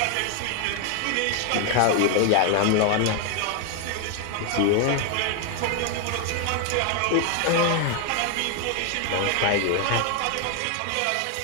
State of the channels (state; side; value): different; both; correlation 0.01